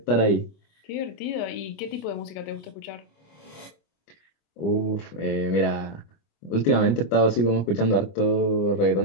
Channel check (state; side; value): late; right; 25 ms